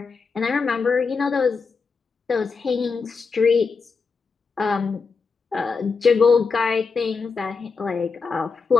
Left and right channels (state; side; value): quieter; right; 4.9 dB